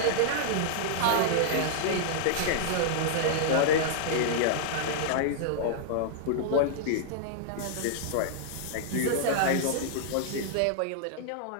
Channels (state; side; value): different; both; correlation -0.02